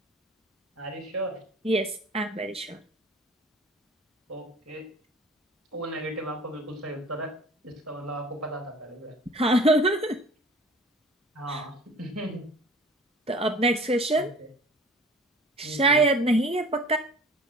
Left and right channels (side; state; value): both; normal; correlation 0.46